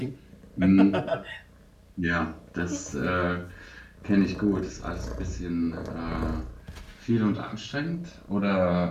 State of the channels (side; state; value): both; identical; correlation 1.00